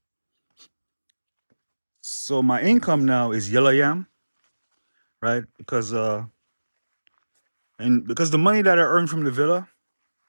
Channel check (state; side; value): inverted; both; correlation -1.00